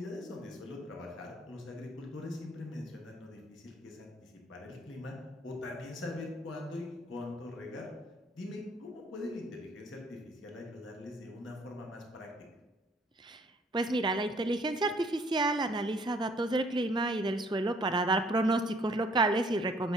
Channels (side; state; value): both; normal; correlation 0.61